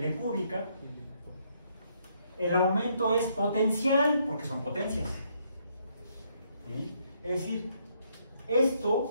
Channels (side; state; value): both; inverted; correlation -0.72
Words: cúbica. El aumento es potencial, porque son potencias. ¿Sí? Es decir,